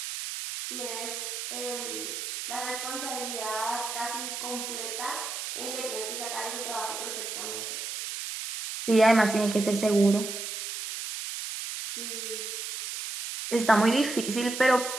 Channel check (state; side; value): noise; right; hiss, 5 dB below the sound